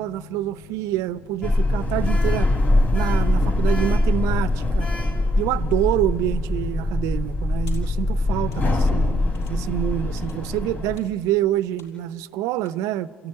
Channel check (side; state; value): both; normal; correlation 0.70